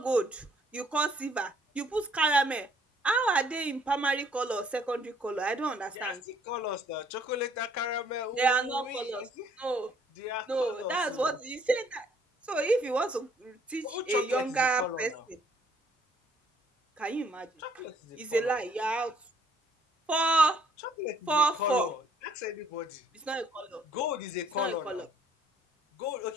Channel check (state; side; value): normal; both; correlation 0.63